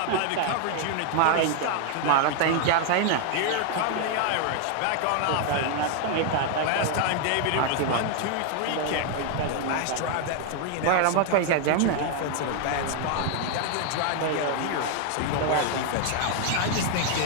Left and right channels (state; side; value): different; both; correlation 0.00